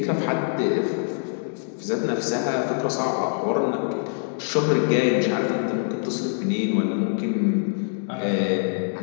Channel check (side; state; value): right; silent; digital silence